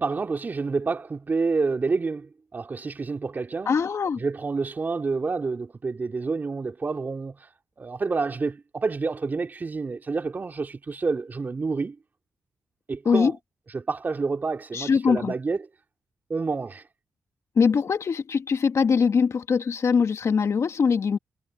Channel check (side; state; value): both; normal; correlation 0.84